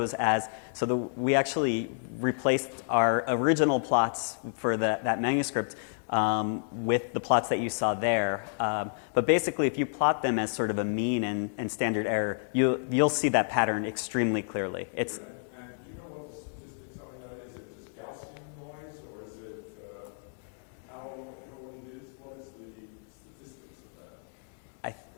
we actually replaced our original plots for that manuscript with the plots that you saw there. But basically, if you plot them as sort of a mean and standard error, you'll see that pattern extremely clearly. It's And do you know what the statistics are? Is it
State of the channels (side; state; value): right; silent; digital silence